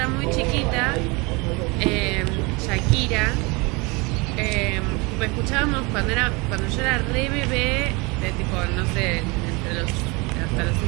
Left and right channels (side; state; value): left; quieter; 27.2 dB